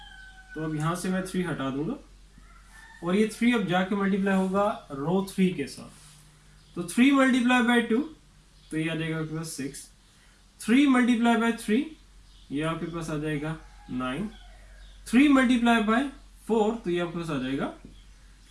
तो अब यहां से मैं 3 हटा दूंगा और ये 3 अब जाके मल्टीप्लाई होगा रो 3 के साथ। तो 3 मल्टीप्लाई बाय 2, तो ये आ जाएगा आपके पास 6, 3 मल्टीप्लाई बाय 3, ये आपके पास आ जाएगा 9, 3 मल्टीप्लाई बाय 4, तो ये आपके पास आ जाएगा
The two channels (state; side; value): identical; both; correlation 1.00